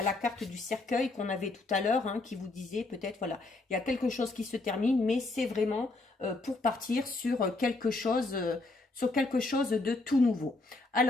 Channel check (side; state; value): right; quieter; 3.2 dB